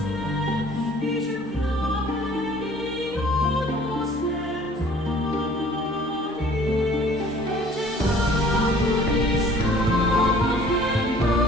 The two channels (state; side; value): normal; both; correlation 0.52